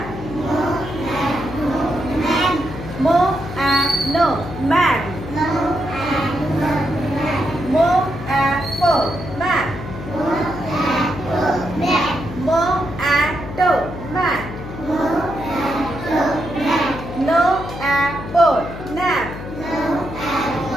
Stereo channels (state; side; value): noise; left; hum, 10 dB below the sound